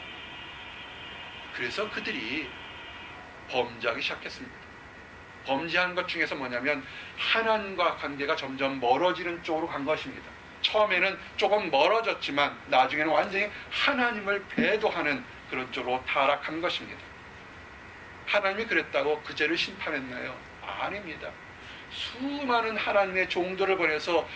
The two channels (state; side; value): identical; both; correlation 1.00